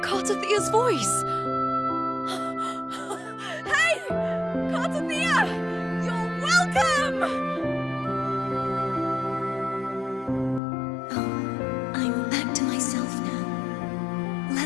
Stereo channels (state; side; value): drops out; right; at 10.6 s